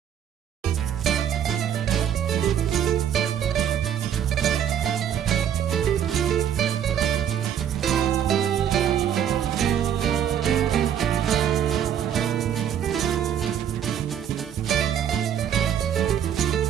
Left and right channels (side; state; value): left; quieter; 9.4 dB